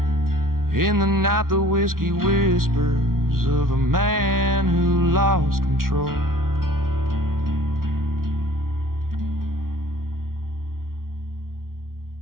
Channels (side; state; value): left; late; 0.92 ms